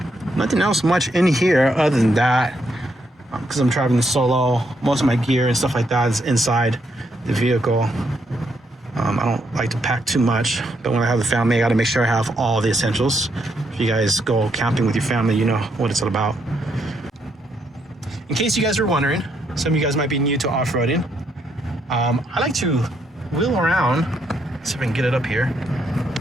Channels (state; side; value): normal; both; correlation 0.76